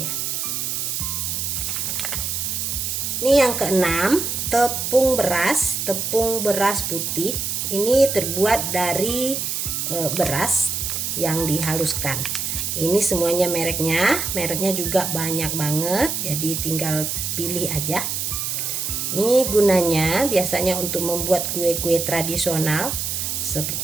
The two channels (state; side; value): noise; right; hiss, 2 dB below the sound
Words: Ini yang keenam, tepung beras putih. Ini terbuat dari beras yang dihaluskan. Ini semuanya mereknya juga banyak banget, jadi tinggal pilih aja. Ini gunanya biasanya untuk membuat kue-kue tradisional